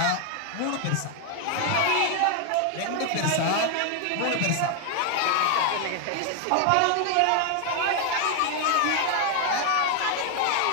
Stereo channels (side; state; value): both; different; correlation 0.00